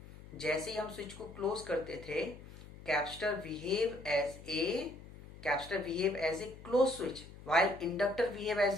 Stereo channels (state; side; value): noise; left; hum, 17 dB below the sound